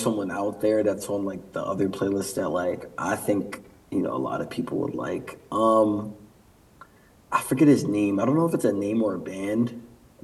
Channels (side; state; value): both; identical; correlation 1.00